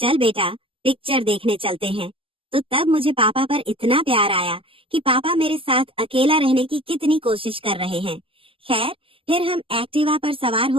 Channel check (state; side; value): late; left; 0.26 ms